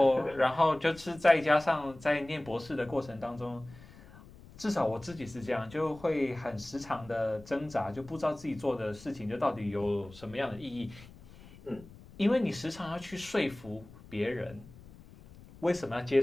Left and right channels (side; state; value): left; noise; rumble, 20 dB below the sound